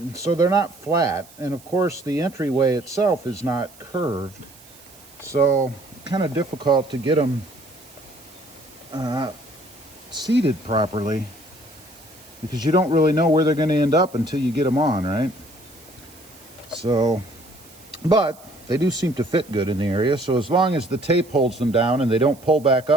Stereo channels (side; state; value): right; noise; hiss, 23 dB below the sound